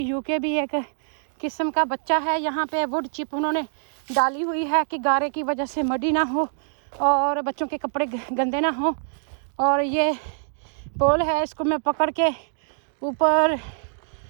भी एक किस्म का बच्चा है। यहाँ पे वुड चिप उन्होंने डाली हुई है कि गारे की वजह से मडी ना हो और बच्चों के कपड़े गंदे ना हो। और ये पोल है, इसको मैं पकड़ के ऊपर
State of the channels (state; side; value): silent; left; digital silence